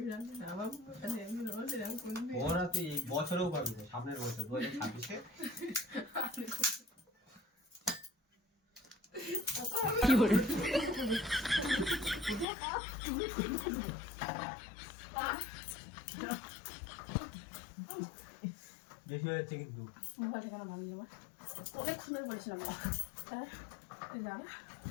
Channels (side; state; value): right; drops out; at 12.5 s